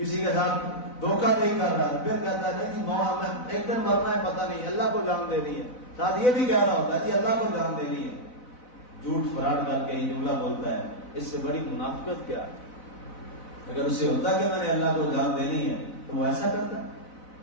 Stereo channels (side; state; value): right; late; 4.0 ms